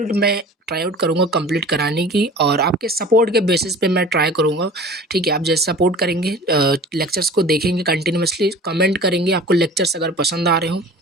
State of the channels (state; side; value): normal; both; correlation 0.42